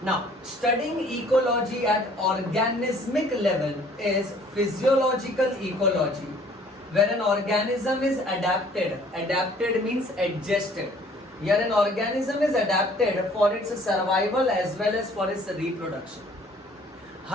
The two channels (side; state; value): both; normal; correlation 0.56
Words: Now, studying ecology at organismic level is physiological ecology, where an organism is adapted. Adapted means adjusted. Here an organism is adapted for its survival as well as for its reproduction.